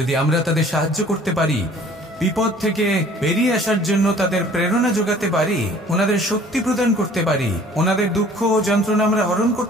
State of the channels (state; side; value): normal; both; correlation 0.52